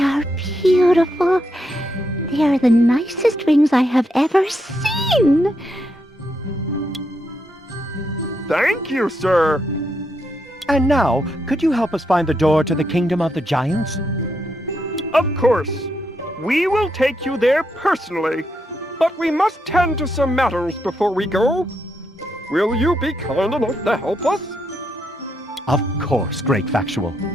are beautiful. They are the nicest rings I have ever seen. Thank you, sir. And now, could you help us find the door to the Kingdom of the Giants? Of course. We will take you there personally, but we must tend to some matters before we go. Will you be kind enough to help us? Of course, Great Factual.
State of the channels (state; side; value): normal; both; correlation 0.80